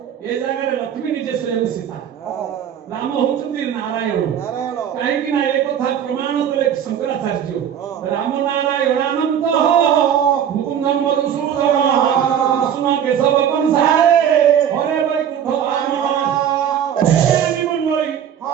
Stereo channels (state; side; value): quieter; left; 9.1 dB